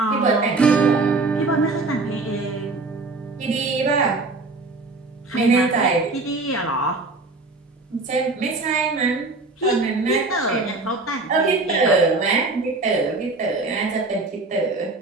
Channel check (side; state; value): left; quieter; 3.4 dB